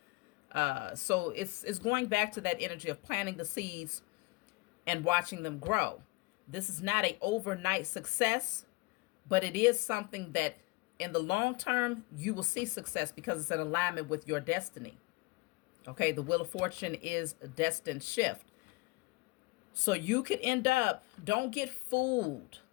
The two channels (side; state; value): right; quieter; 24.1 dB